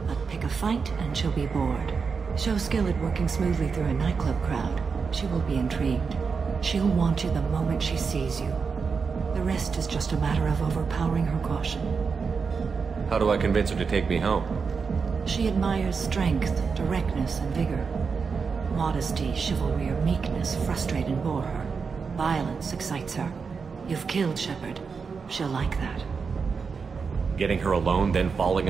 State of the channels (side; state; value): left; quieter; 5.4 dB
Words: But pick a fight and she'll be bored. Show skill at working smoothly through a nightclub crowd. She will be intrigued. She'll want you the moment she sees you. The rest is just a matter of overpowering her caution. How do I convince her to take me home? She admires strength, directness, and vigor. Modesty, chivalry, or meekness frustrate and bore her. Violence excites her. You've killed Shepard. She'll like that. Getting her alone, then